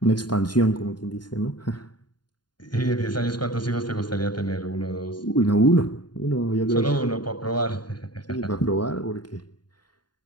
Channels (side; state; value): right; late; 0.70 ms